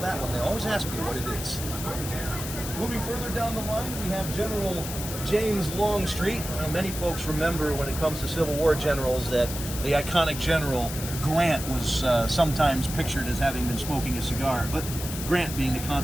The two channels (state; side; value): noise; left; hiss, 8 dB below the sound